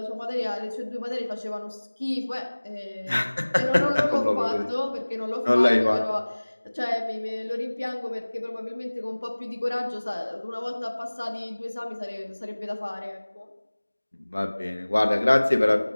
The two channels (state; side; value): inverted; both; correlation -1.00